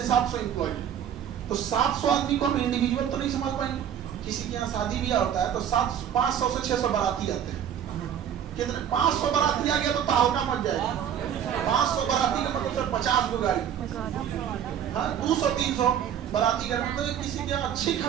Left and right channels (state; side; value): quieter; left; 9.3 dB